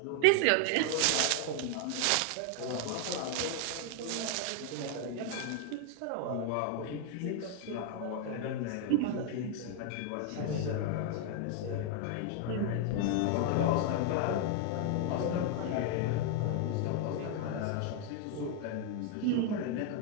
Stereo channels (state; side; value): different; both; correlation 0.00